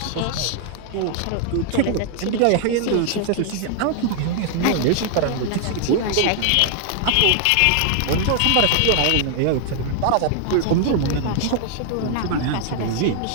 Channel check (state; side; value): different; both; correlation 0.00